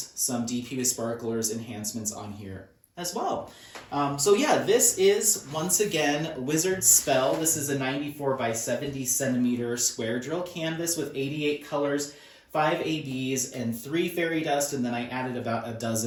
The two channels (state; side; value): identical; both; correlation 1.00